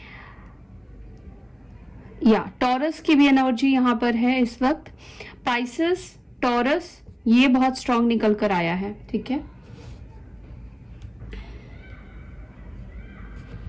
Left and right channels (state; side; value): identical; both; correlation 1.00